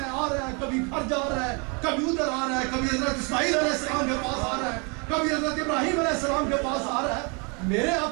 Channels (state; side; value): quieter; left; 33.0 dB